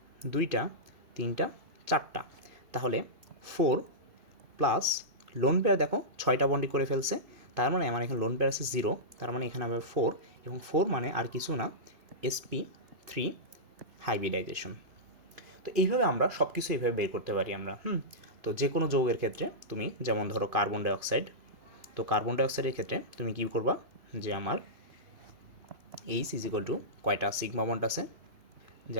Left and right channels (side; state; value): left; late; 2.6 ms